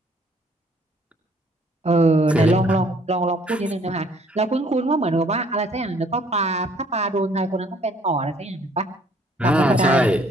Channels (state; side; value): normal; both; correlation 0.61